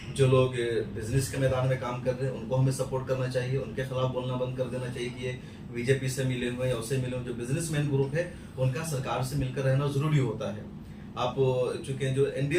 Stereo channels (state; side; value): identical; both; correlation 1.00